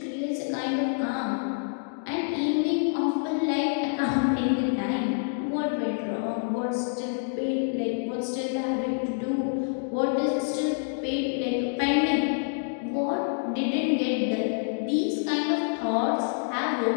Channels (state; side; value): silent; right; digital silence